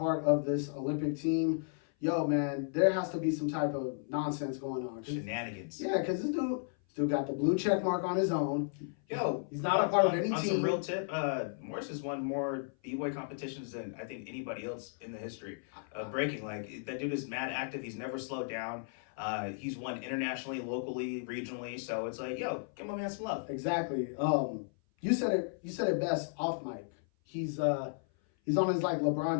of this Olympic team, yo, man, there has to be some type of nonsense going on. Shenanigans. Yeah, because this dude got the blue check mark on his own. Yo, he's not a part of any on team. Some real tip, Morris has won more B-boy competitions than I think anybody else in the history of breaking. Like, that dude is mad active. He's never slowed down. He's won internationally, locally, regionally. So it's like, yo, give my man some love. Exactly. You said it best off mic. He's on his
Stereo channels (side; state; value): right; silent; 55 dB below the other